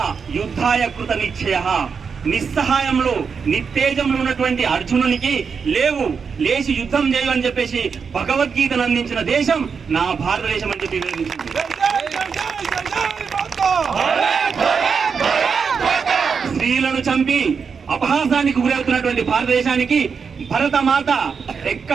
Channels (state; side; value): quieter; left; 5.9 dB